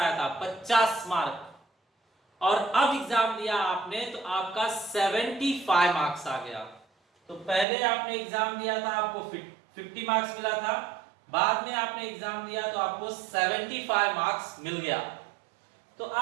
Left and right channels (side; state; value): left; drops out; at 7.7 s